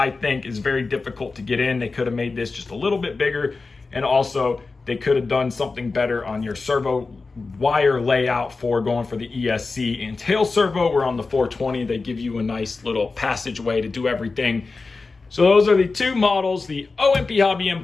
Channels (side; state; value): right; quieter; 4.0 dB